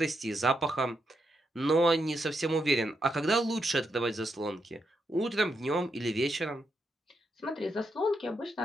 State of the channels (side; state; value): both; normal; correlation 0.81